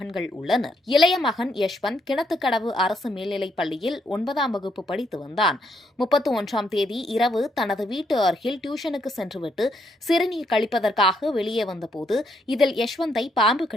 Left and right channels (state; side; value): normal; both; correlation 0.75